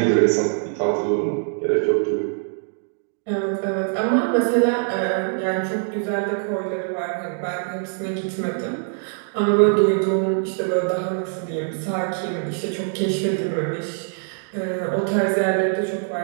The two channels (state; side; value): silent; left; 62 dB below the other